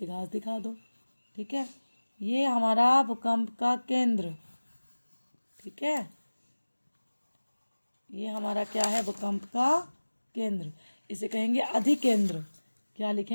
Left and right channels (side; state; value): both; inverted; correlation -1.00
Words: घास दिखा दो, ठीक है। ये हमारा भूकंप का केंद्र, ठीक है। ये हमारा क्या है? भूकंप का केंद्र। इसे कहेंगे अधिकेंद्र। क्या